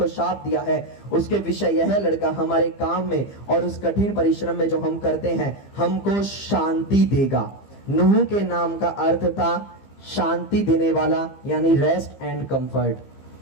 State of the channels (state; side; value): late; right; 15 ms